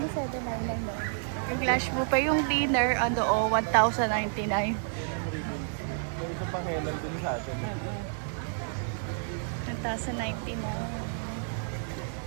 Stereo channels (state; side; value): silent; left; digital silence